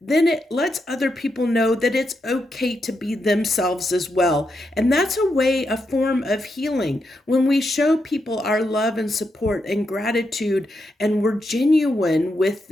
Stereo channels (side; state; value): both; normal; correlation 0.83